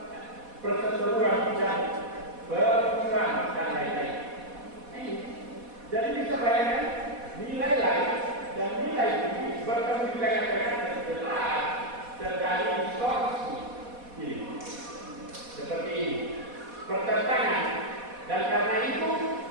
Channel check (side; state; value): left; late; 4.1 ms